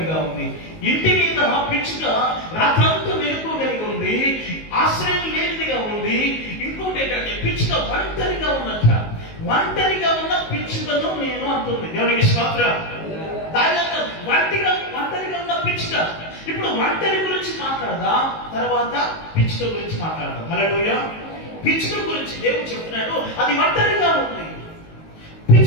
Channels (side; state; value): right; late; 19 ms